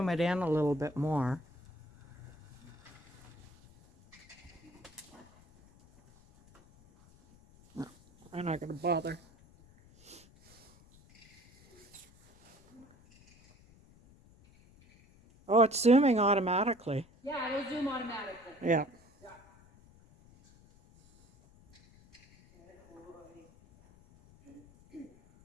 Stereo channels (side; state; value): left; noise; rumble, 26 dB below the sound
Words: it in a little bit more. No, I'm not going to bother. Oh, it's zooming automatically. Yeah, it'll zoom automatically. Yeah.